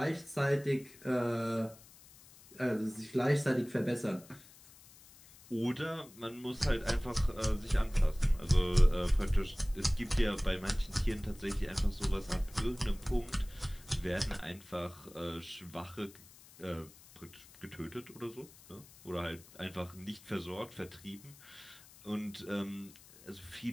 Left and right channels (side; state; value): left; noise; hiss, 22 dB below the sound